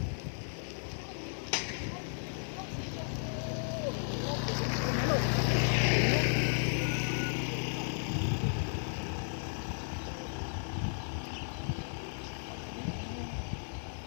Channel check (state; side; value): silent; right; digital silence